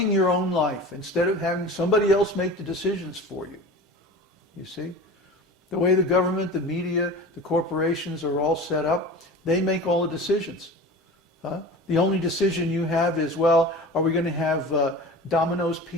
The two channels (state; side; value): normal; both; correlation 0.35